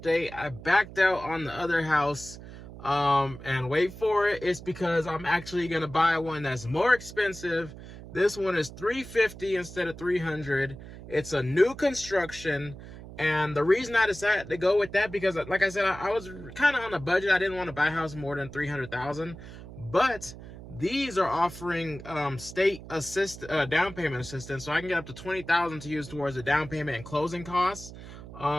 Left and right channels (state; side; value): noise; right; hum, 14 dB below the sound